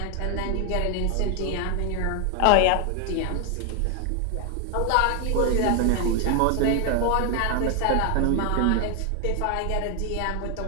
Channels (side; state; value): both; different; correlation 0.00